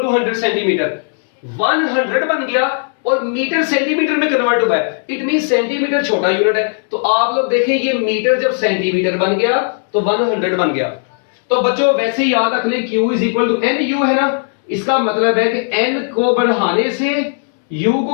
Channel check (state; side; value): silent; right; 69 dB below the other